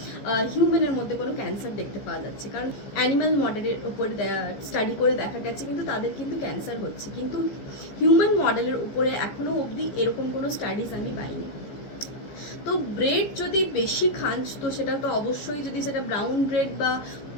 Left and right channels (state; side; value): late; right; 15 ms